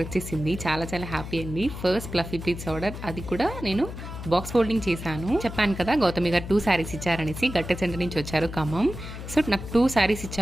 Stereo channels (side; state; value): left; noise; hum, 9 dB below the sound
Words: వచ్చేసింది. చాలా చాలా హ్యాపీ అండి. ఫస్ట్ ఫ్లఫీ ప్లీట్స్ ఆర్డర్, అది కూడా నేను బాక్స్ ఫోల్డింగ్ చేశాను. చెప్పాను కదా గౌతమి గారు 2 శారీస్ ఇచ్చారనేసి, గట్టె సెంటర్ నుంచి వచ్చారు ఖమ్మం. సో నాకు 2 శారీస్